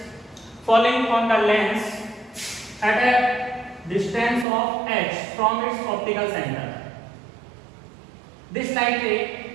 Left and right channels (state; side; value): drops out; left; at 4.5 s